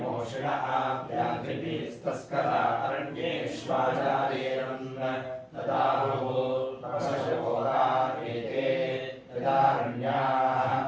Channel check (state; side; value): identical; both; correlation 1.00